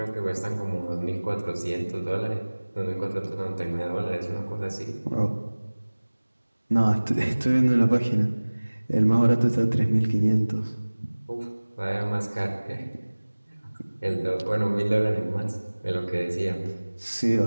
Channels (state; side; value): inverted; both; correlation -1.00